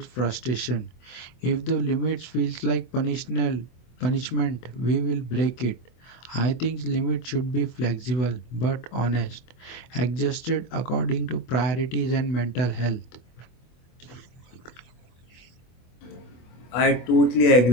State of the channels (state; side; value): late; right; 24 ms